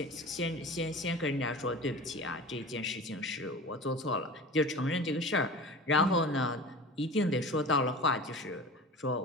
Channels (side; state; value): both; normal; correlation 0.35